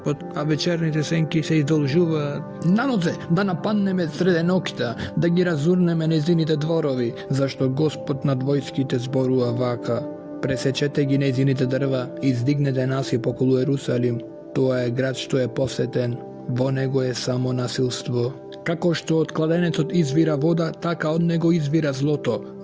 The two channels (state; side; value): identical; both; correlation 1.00